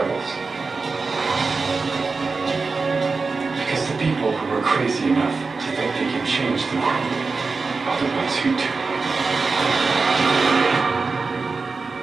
Because the people who are crazy enough to think they can change the world are the ones who do.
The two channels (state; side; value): quieter; left; 4.3 dB